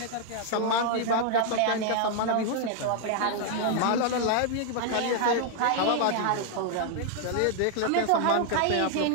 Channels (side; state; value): both; different; correlation 0.00